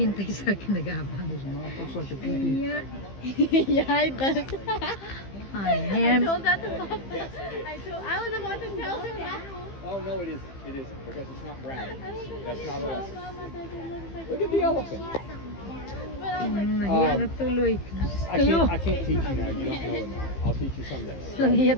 sa akin, nag-aabang. Looks like a pee-pee. Yeah. Yeah, it does. I I told that to Papa. I was about to tell him that. Oh no, it isn't. It isn't because it's not brown. That's not Mama, us. that it looks like Look at the elephant. But I was like, Nahiya na tuloy. I can't teach you now. You don't know it now. I'll teach you someday. Nahiya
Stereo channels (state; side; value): late; right; 15 ms